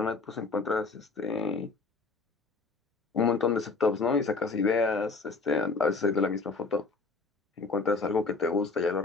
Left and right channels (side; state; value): right; quieter; 4.2 dB